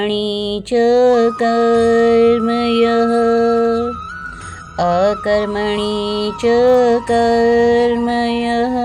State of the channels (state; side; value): identical; both; correlation 1.00